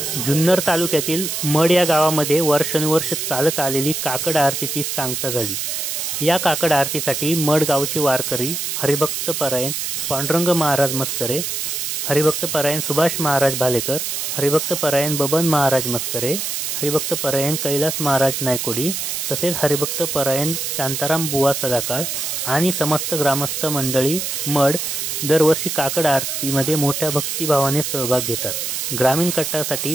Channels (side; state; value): right; noise; hiss, 2 dB below the sound